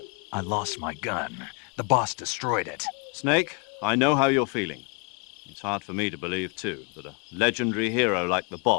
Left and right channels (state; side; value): quieter; right; 35.8 dB